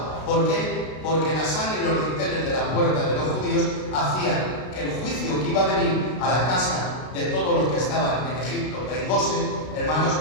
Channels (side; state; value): right; late; 32 ms